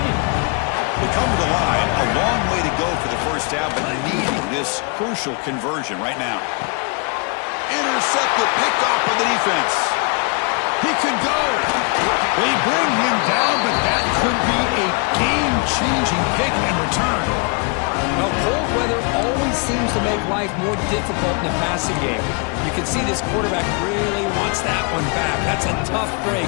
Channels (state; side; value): quieter; right; 33.8 dB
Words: They come to the line, a long way to go for the first down, but needing this crucial conversion right now. Intercepted, picked off by the defense. He could go. They bring him down, but that could be a game-changing pick and return. Well, cold weather always seems to make life more difficult in the passing game. You can see this quarterback really wants that one back. That's a tough break